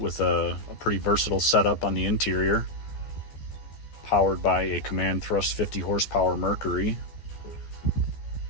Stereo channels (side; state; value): right; late; 14 ms